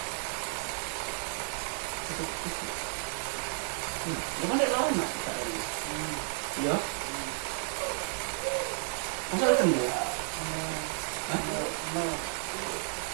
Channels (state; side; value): silent; left; 56 dB below the other